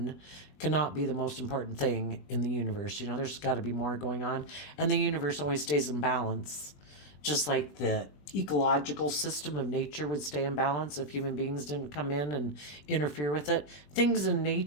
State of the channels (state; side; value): late; right; 20 ms